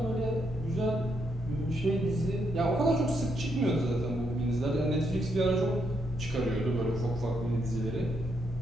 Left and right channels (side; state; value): both; normal; correlation 0.78